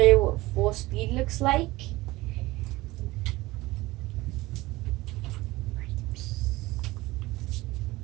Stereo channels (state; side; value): quieter; left; 19.6 dB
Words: you what full speed looks like.